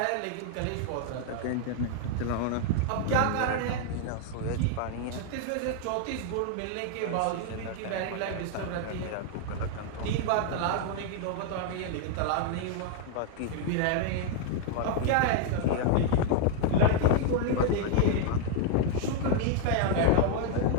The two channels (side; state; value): both; different; correlation 0.00